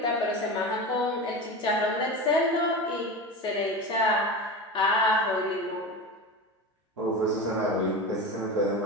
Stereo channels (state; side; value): normal; both; correlation 0.26